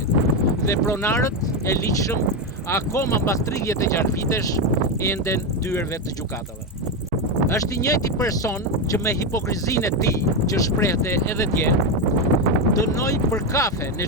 Dhe pronarët e ligjshëm akoma mbas 36 vitesh enden dyerve të gjykatave. Është I njëjti person që me hipokrizinë e tij, që shprehte edhe dje, dënoi për kafe në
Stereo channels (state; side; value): normal; both; correlation 0.10